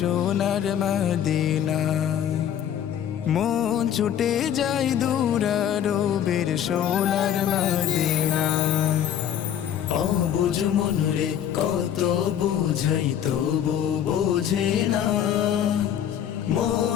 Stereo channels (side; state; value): right; quieter; 9.7 dB